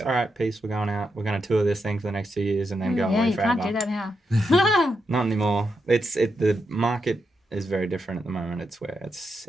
All right, peace, we're going out. We're going to tour this thing for the next 2 years and then go Yeah, away you forever. can't do that now. Not anymore. The market is very different at the moment. It's where it's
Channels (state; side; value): normal; both; correlation 0.84